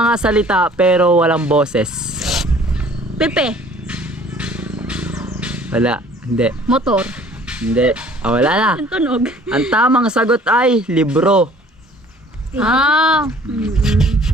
salita pero walang boses. Pepe. Wala, hindi. Motor. Hindi. Wala na. Ang tunog. Ang tamang sagot ay libro. Ano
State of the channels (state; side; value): normal; both; correlation 0.53